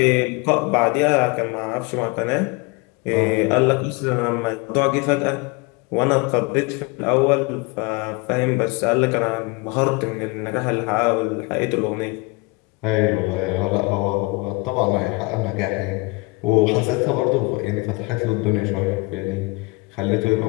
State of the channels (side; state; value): right; quieter; 26.6 dB